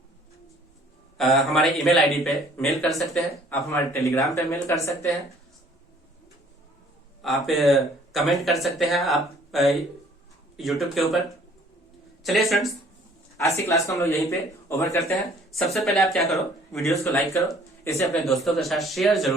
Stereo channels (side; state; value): both; normal; correlation 0.57